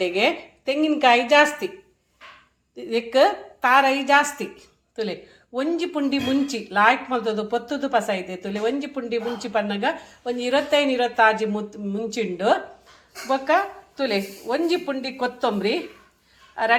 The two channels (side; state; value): both; identical; correlation 1.00